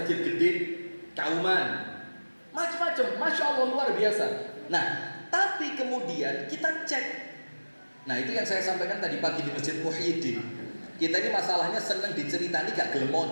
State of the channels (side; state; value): both; inverted; correlation -1.00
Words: gede Kauman. Macam-macam, Masya Allah luar biasa. Nah, tapi kemudian kita cek. Nah, itu yang saya sampaikan tadi pagi di Masjid Muhyiddin. Kita ini masalahnya senang diceritani gak gelem